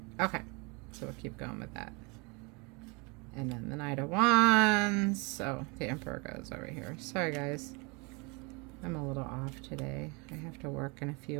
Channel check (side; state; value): left; quieter; 29.6 dB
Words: Okay, so we'll keep going with that. And then the Knight of Wands. So the Emperor goes over here. Sorry, guys. I'm a little off today. I have to work in a